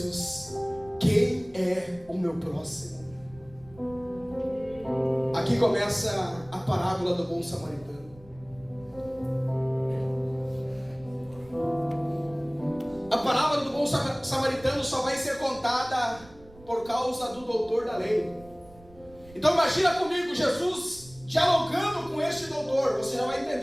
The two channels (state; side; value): noise; right; rumble, 23 dB below the sound